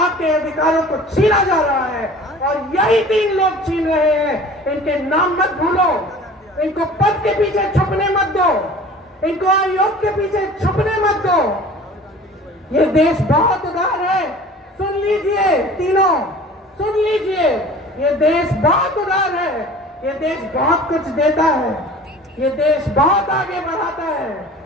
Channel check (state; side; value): normal; both; correlation 0.43